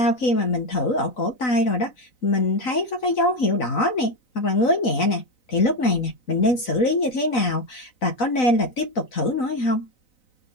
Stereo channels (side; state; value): right; late; 3.9 ms